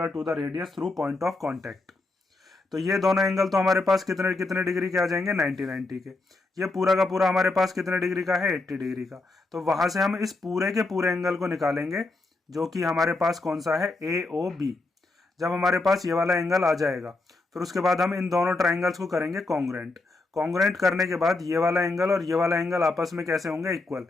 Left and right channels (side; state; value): right; quieter; 3.2 dB